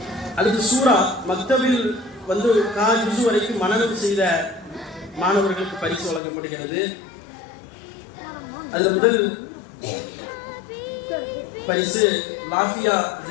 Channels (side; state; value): right; drops out; at 6.2 s